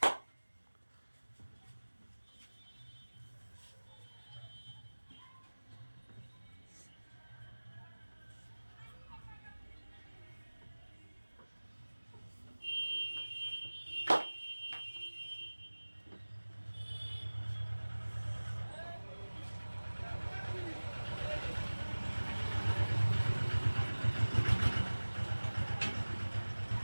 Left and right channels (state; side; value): inverted; both; correlation -1.00